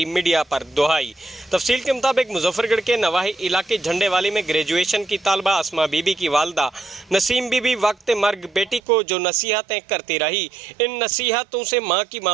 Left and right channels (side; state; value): left; drops out; at 8.8 s